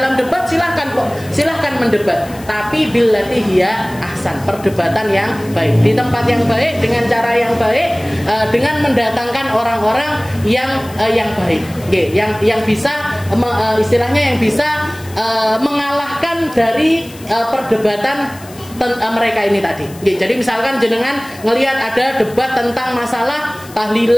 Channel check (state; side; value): noise; left; hiss, 20 dB below the sound